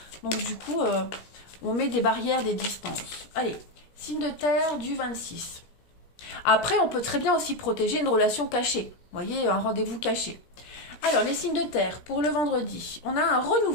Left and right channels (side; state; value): right; late; 17 ms